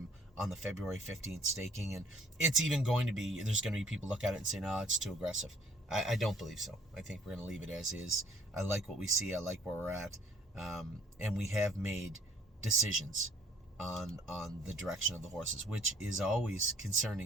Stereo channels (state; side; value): normal; both; correlation 0.59